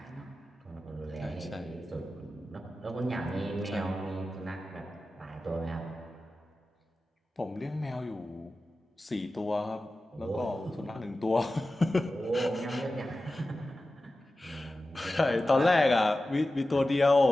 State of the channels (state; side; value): normal; both; correlation 0.94